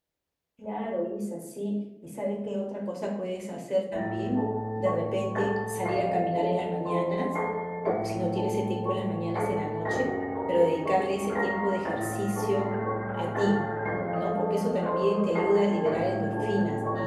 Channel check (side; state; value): both; identical; correlation 1.00